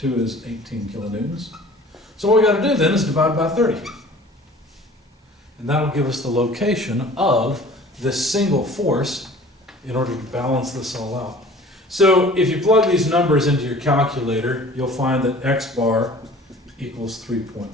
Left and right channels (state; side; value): normal; both; correlation 0.47